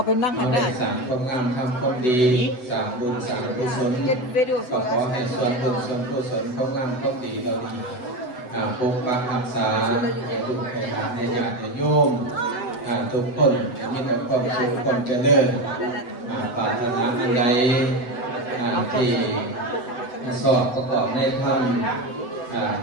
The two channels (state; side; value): late; right; 8.0 ms